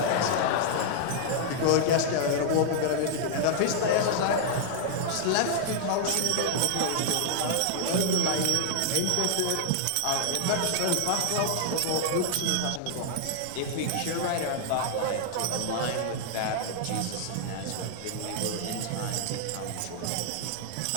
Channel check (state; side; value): different; both; correlation 0.00